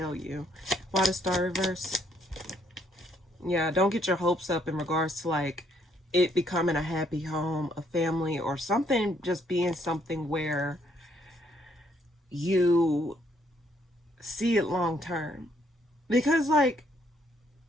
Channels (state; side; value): normal; both; correlation 0.69